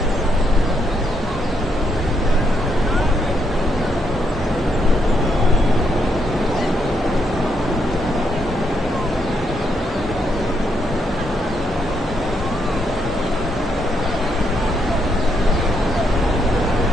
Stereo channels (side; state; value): both; normal; correlation 0.77